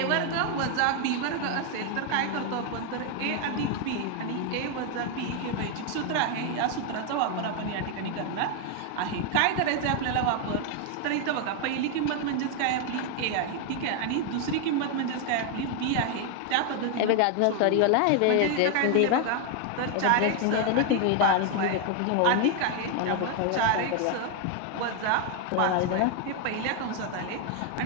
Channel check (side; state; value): both; different; correlation 0.01